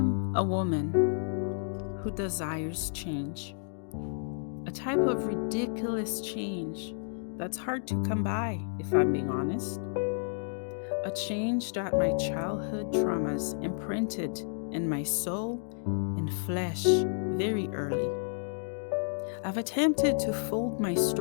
a woman who desires change, a type of ridiculous change that's hard to come by, if I'm being honest. A change that my childhood traumas imprinted in my soul and flesh very early. I've attempted to fold my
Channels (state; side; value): silent; right; digital silence